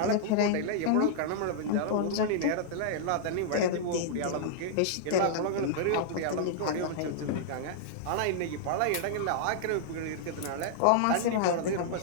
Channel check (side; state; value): both; different; correlation -0.01